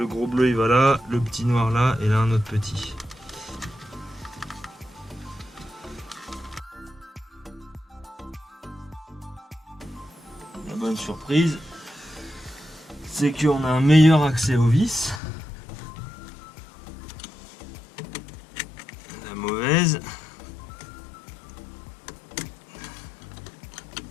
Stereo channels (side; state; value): right; drops out; at 15.2 s